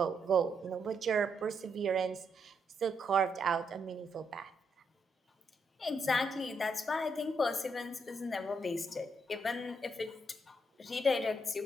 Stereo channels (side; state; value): both; normal; correlation 0.78